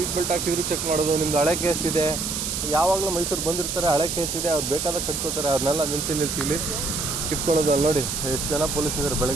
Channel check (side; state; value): right; noise; hiss, 3 dB below the sound